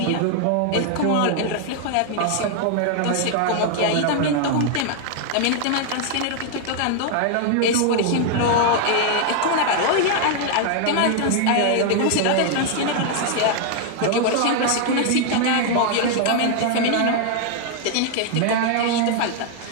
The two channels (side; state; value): both; different; correlation 0.00